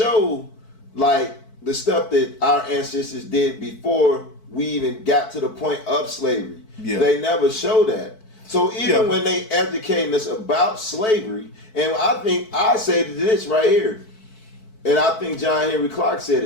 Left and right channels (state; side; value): late; right; 4.6 ms